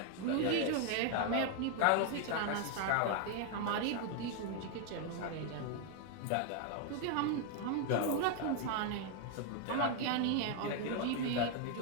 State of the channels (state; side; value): different; both; correlation 0.01